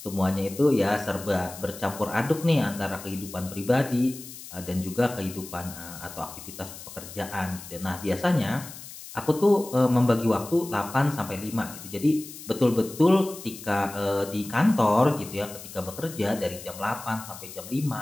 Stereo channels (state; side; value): noise; left; hiss, 14 dB below the sound